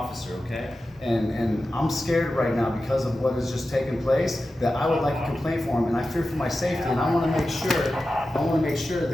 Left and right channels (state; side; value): normal; both; correlation 0.93